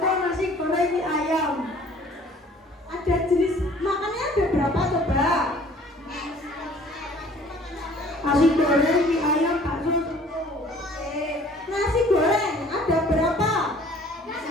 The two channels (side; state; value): both; normal; correlation 0.53